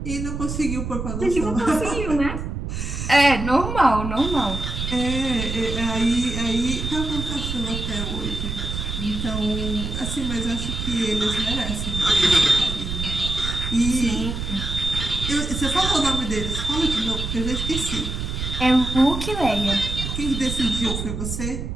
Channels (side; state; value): right; noise; rumble, 4 dB below the sound